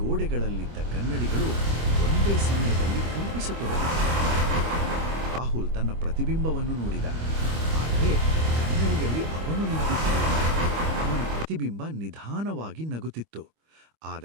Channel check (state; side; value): late; left; 25 ms